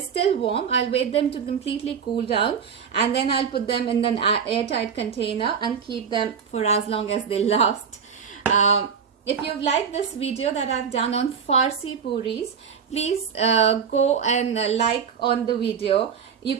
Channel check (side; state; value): left; quieter; 6.8 dB